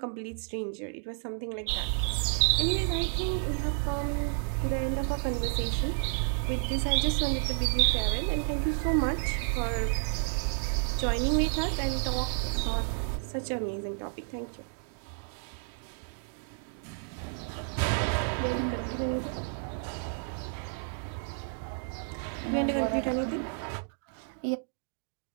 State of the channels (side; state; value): left; silent; digital silence